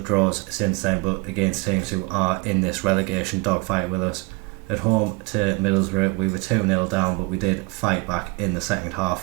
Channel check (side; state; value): left; quieter; 25.4 dB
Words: draws since then, but against teams who are in this relegation dogfight with us. At home to Middlesbrough, we were 2-0 down, but we did fight back in the second